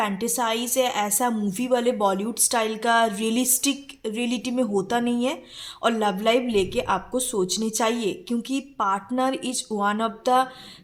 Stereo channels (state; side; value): identical; both; correlation 1.00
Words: है, ऐसा मूवी वाले बॉलीवुड स्टाइल का रियलिस्टिक रियलिटी में होता नहीं है। और लव लाइफ लेके आपको सोचनी चाहिए, क्योंकि partner is one of the